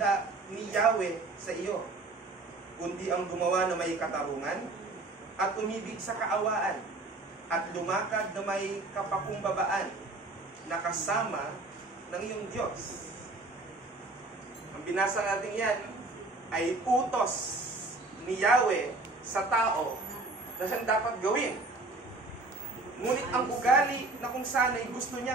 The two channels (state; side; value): quieter; left; 3.2 dB